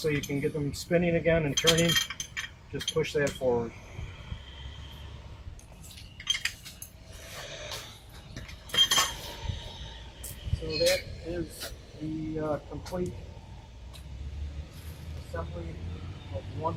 you can get them spinning again and turning, just push that forward. So that is the complete assembly of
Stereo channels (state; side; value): identical; both; correlation 1.00